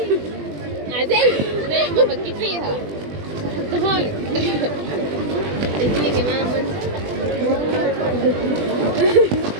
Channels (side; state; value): left; late; 20 ms